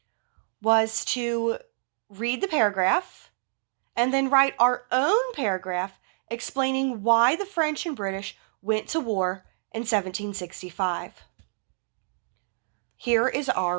was to read the paragraph and then write our own paragraph explaining why the French and British went to war in 1765. Here is our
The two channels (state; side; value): silent; left; digital silence